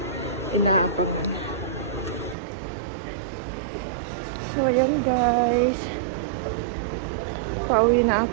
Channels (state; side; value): drops out; left; at 2.4 s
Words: inaabot. So ayan guys. Pauwi na